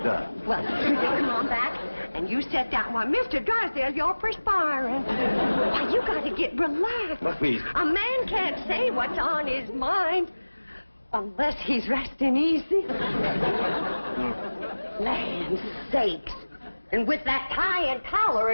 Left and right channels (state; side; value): inverted; both; correlation -1.00